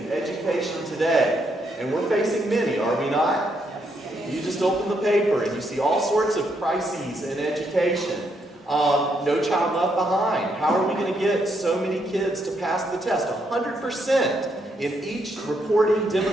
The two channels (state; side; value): normal; both; correlation 0.76